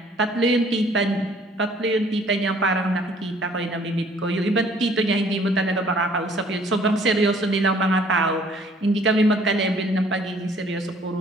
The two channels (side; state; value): both; normal; correlation 0.58